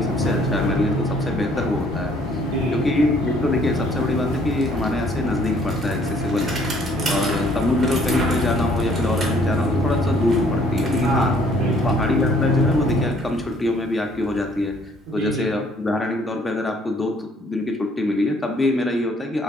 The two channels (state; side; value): normal; both; correlation 0.61